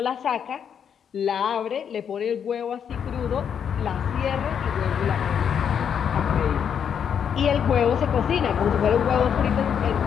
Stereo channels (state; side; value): quieter; right; 7.9 dB